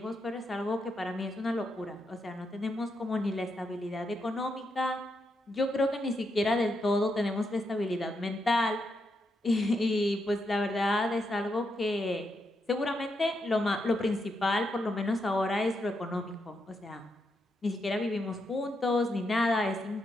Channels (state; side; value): normal; both; correlation 0.82